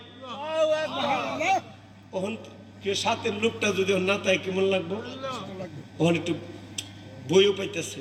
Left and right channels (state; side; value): identical; both; correlation 1.00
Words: ওখান কে সাথের লোকটা যদি ওর না তাই কেমন লাগবো? ওখানে একটু বইও পাইতেছে,